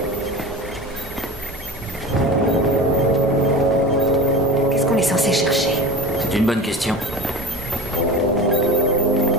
Qu'est-ce qu'on est censé chercher? C'est une bonne question.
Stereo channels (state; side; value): normal; both; correlation 0.31